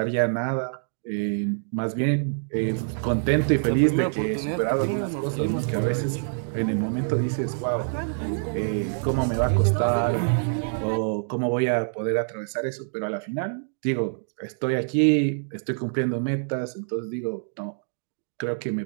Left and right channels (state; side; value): silent; left; digital silence